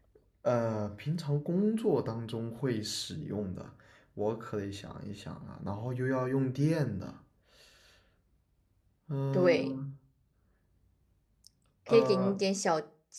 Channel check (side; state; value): both; identical; correlation 1.00